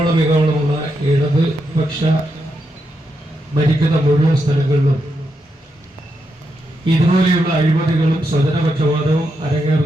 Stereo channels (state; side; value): normal; both; correlation 0.83